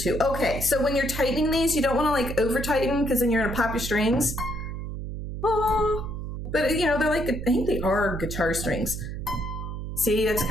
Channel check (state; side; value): noise; right; hum, 6 dB below the sound